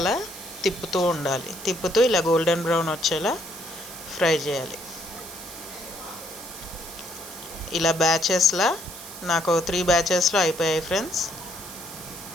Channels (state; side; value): noise; right; hiss, 13 dB below the sound